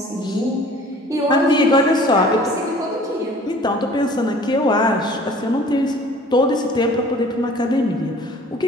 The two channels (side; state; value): both; normal; correlation 0.49